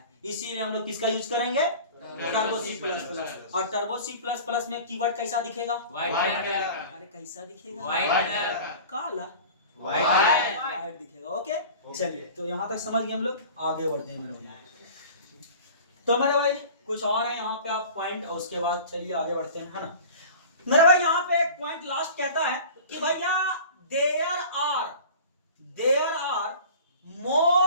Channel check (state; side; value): inverted; both; correlation -0.40